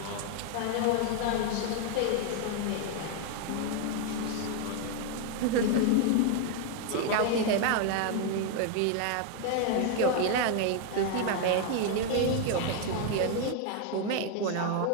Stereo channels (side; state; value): both; different; correlation 0.01